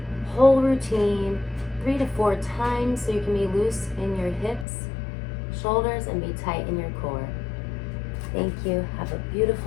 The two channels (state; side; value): drops out; right; at 4.7 s